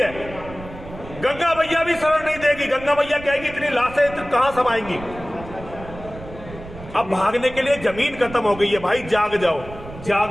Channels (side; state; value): right; noise; rumble, 15 dB below the sound